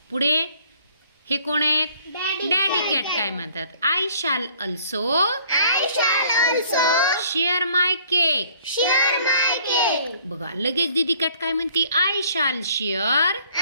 पुढे हे कोण आहेत? डॅडी कॅट काय म्हणतात? आय शाल अल्सो शेअर माय केक. बघा लगेच दीदी कॅट काय म्हणते? आय शाल शेअर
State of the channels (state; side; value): inverted; both; correlation -0.58